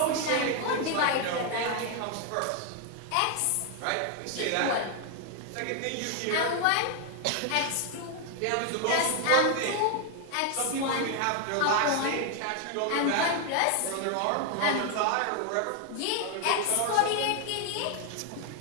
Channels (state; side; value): different; both; correlation 0.01